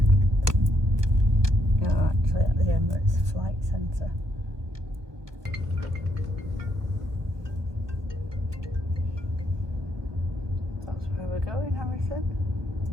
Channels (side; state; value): left; late; 1.3 ms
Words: You're actually at the Emirates Flight Centre. That's where we're going, Harrison.